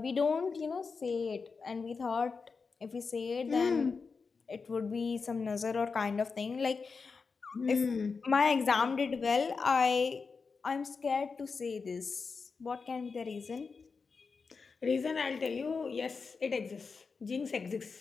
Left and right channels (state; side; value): quieter; right; 4.9 dB